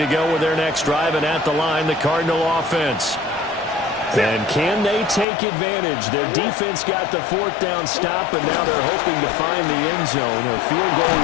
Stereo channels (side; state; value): right; drops out; at 5.2 s